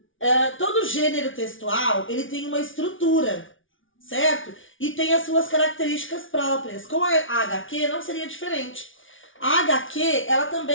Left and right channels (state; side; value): late; right; 0.57 ms